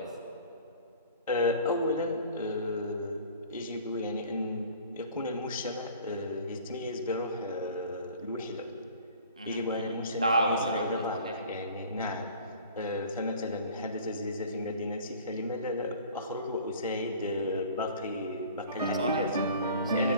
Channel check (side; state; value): both; inverted; correlation -0.46